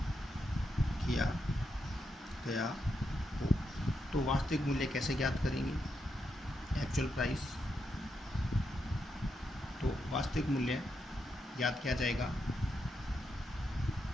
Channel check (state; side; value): normal; both; correlation 0.83